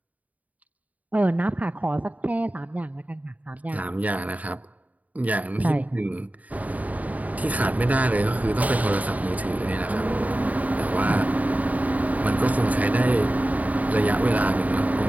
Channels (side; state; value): left; late; 0.073 ms